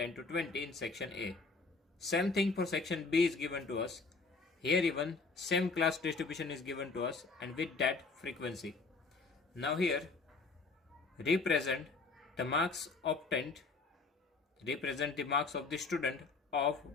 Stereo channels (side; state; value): right; quieter; 4.0 dB